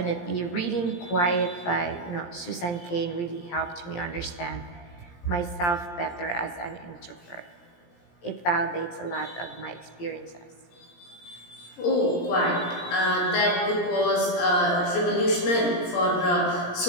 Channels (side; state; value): right; late; 17 ms